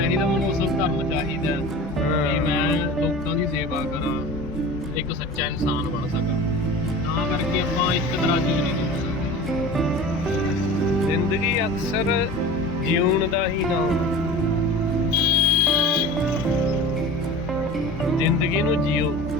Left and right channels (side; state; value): both; normal; correlation 0.36